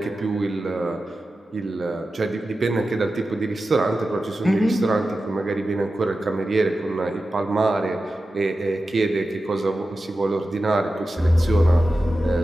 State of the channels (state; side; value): normal; both; correlation 0.93